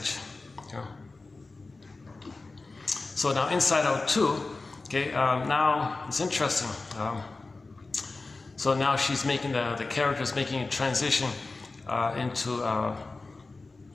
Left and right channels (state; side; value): quieter; right; 3.6 dB